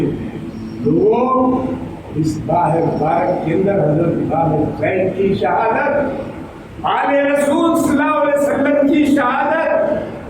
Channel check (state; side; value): identical; both; correlation 1.00